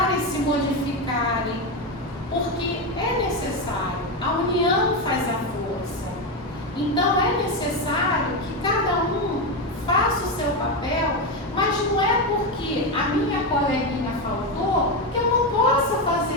se modificarem, porque é necessário, a união faz a força. Então é necessário que cada um faça o seu papel, mas não é porque a minha coleguinha faltou que eu não possa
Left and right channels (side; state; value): both; normal; correlation 0.11